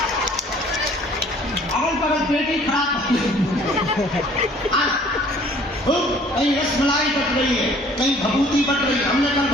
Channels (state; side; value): normal; both; correlation 0.55